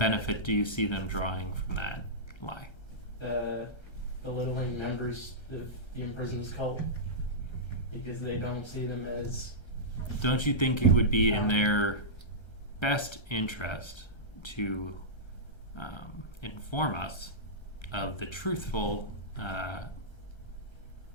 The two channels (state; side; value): late; right; 1.3 ms